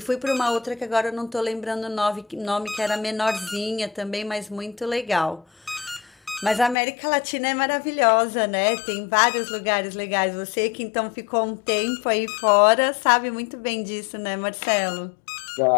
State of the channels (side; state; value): right; drops out; at 6.8 s